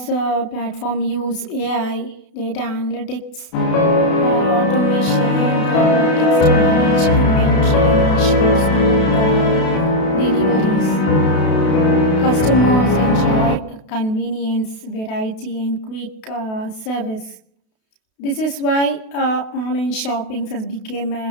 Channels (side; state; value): right; late; 32 ms